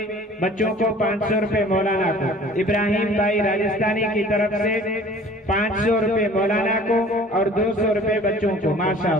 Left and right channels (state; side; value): normal; both; correlation 0.48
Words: बच्चों को, 500 रुपए मौलाना को, इब्राहिम भाई राजस्थानी की तरफ से 500 रुपए मौलाना को और 200 रुपए बच्चों को।